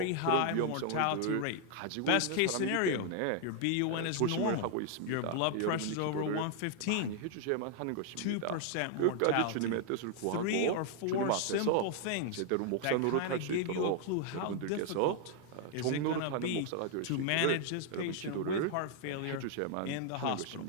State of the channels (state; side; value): different; both; correlation 0.00